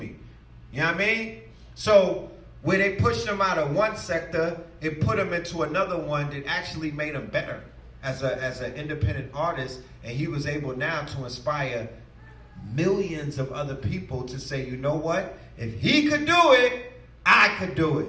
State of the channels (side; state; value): both; identical; correlation 1.00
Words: You know what I mean? So where they pushed them out of one sector, it put them into another one that actually made him better as an independent artist. And he was able now to inspire millions of other people to say, you know what? If he could do it, I could do